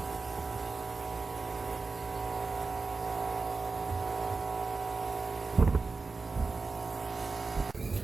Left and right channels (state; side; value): quieter; left; 4.1 dB